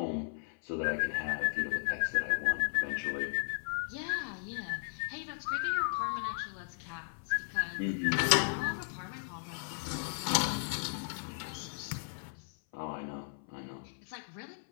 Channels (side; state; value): right; silent; 54 dB below the other